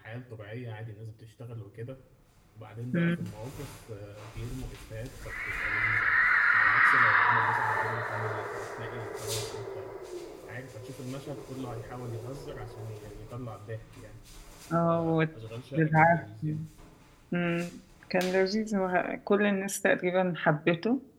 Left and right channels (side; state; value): both; identical; correlation 1.00